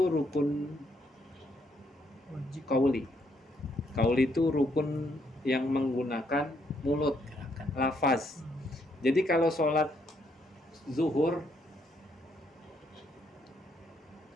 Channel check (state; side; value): normal; both; correlation 0.73